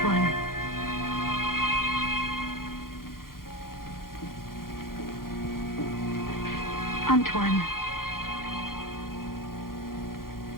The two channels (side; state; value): right; late; 0.92 ms